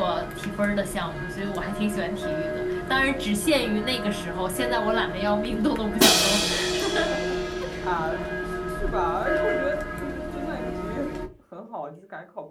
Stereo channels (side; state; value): both; identical; correlation 1.00